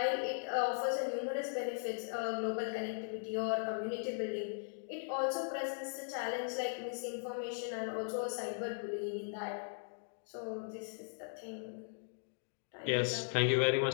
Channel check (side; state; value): right; silent; digital silence